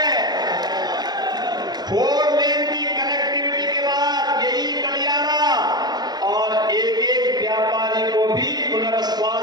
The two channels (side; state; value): left; late; 0.20 ms